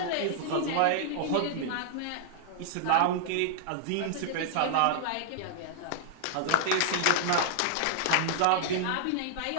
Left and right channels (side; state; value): both; different; correlation -0.01